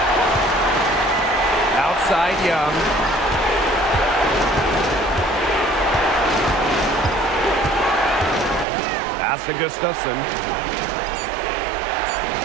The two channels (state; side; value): drops out; left; at 8.7 s